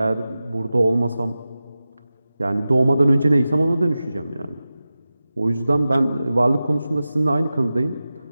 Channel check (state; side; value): inverted; both; correlation -0.94